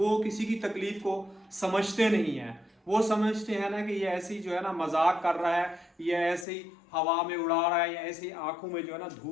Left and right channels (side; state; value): right; drops out; at 6.5 s